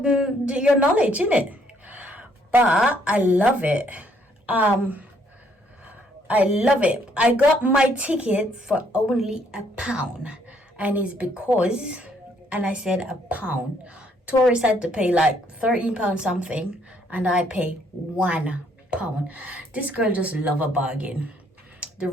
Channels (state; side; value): normal; both; correlation 0.67